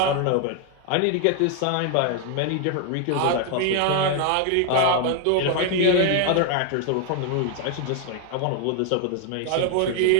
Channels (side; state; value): both; different; correlation 0.00